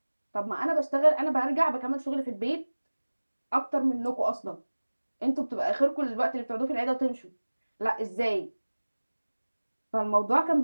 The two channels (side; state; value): both; inverted; correlation -1.00